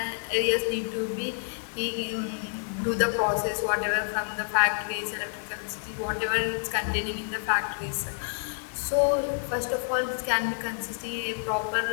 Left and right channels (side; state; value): right; silent; digital silence